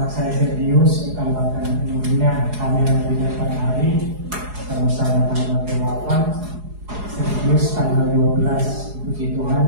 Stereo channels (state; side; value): late; left; 4.8 ms